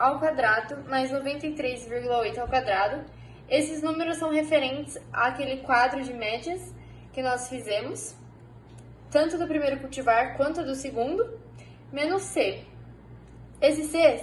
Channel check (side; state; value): both; identical; correlation 1.00